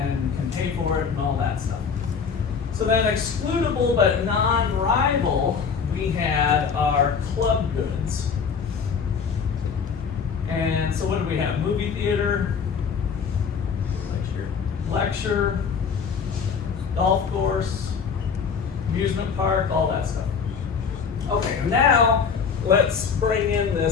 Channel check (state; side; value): quieter; right; 6.1 dB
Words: can pay for it and all that stuff. So then excludable but non-rival, we had our club goods. And so what do we have? Movie theater, lecture, golf course, amusement park, all that stuff. Okay, now let's bring in